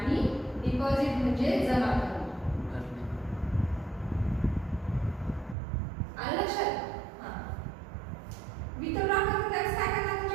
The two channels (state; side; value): drops out; left; at 5.6 s